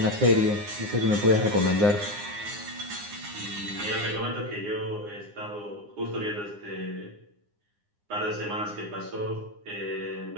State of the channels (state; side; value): late; left; 9.7 ms